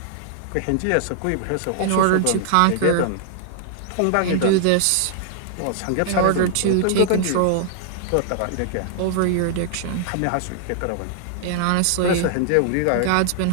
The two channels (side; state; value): both; different; correlation 0.00